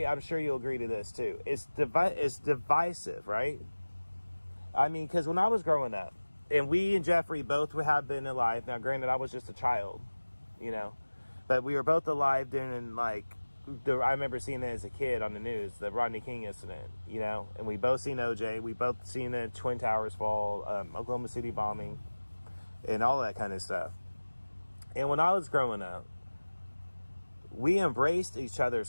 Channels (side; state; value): both; inverted; correlation -1.00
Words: I'm sure you'll agree to this too. It's divisive, right? I mean, because when I was growing up, and we and Jeffrey both have been alive. Now, granted, I was just a child, you know, but we were both alive during, like, I remember seeing it as a kid on the news, the Rodney King incident, you know, and we both seen OJ. We both seen the Twin Towers fall, Oklahoma City bombing, and all that kind of stuff. And when I was growing up, we embraced each